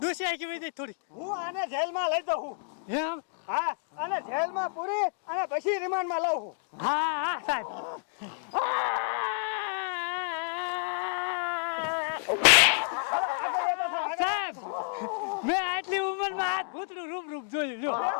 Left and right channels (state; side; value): silent; right; digital silence